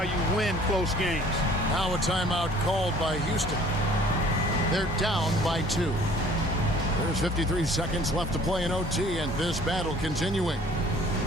you win close games. Now a timeout called by Houston. They're down by 2. There's 53 seconds left to play in OT, and this battle continuing.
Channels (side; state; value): both; normal; correlation 0.53